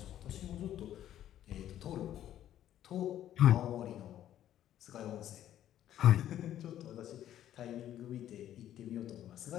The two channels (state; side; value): quieter; right; 11.7 dB